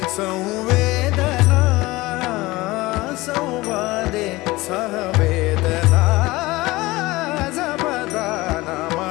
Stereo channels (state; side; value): quieter; right; 20.3 dB